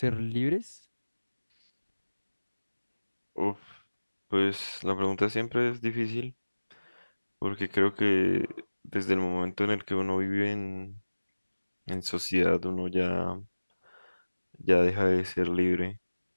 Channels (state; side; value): inverted; both; correlation -1.00